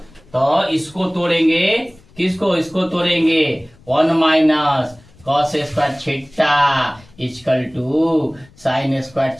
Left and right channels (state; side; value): noise; left; rumble, 27 dB below the sound